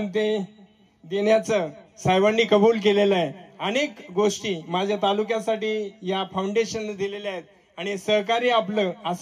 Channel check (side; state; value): both; identical; correlation 1.00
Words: ते देण्याचं साहेबांनी कबूल केलेलं आहे. अनेक गोष्टी माझ्या तालुक्यासाठी या फाउंडेशनने दिलेल्या आहेत आणि सहकार्य आपलं